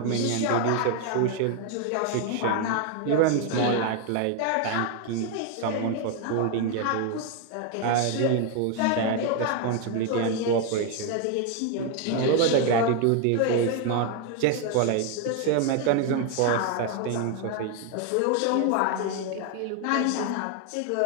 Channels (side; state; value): both; different; correlation 0.01